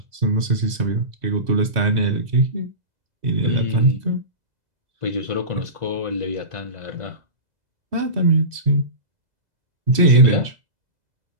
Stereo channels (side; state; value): left; late; 2.0 ms